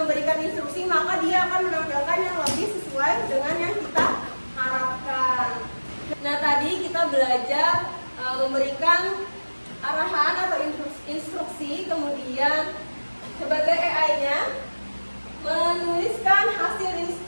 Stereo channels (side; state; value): both; inverted; correlation -1.00